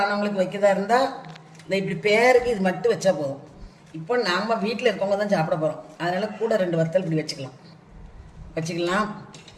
வைக்கதா இருந்தால் இந்த இப்படி பேருக்கு இது மட்டும் வச்சா போதும். இப்போ நாம் வீட்டில் இருக்கவங்க தான் சாப்பிட போகிறோம், அதனால் கூட 2 வத்தல் இப்படி வச்சுக்கலாம்.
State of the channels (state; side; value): identical; both; correlation 1.00